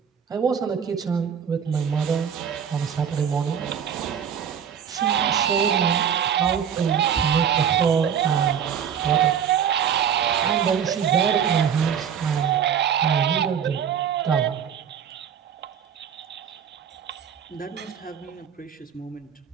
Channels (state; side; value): quieter; left; 8.2 dB